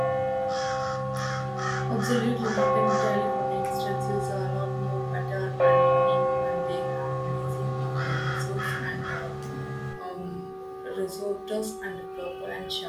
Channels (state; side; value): identical; both; correlation 1.00